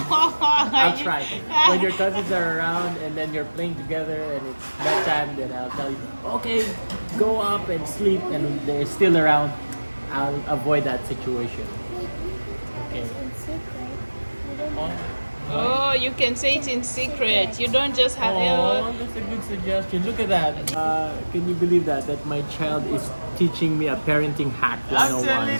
I'll try. When your cousins are around and then you're playing together and it's bedtime, then I'll tell you, okay, go up and sleep, and they're still around. I'll avoid that situation. Okay. It's in secret. You don't Oh, Oh, you can say it in secret. You don't just have. oh, that's a good suggestion. Look at that. Can you believe that my child is teaching me a parenting hack 101? telling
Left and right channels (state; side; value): inverted; both; correlation -1.00